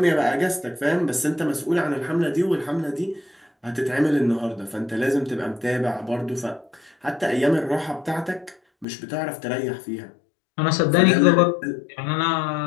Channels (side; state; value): right; drops out; at 8.8 s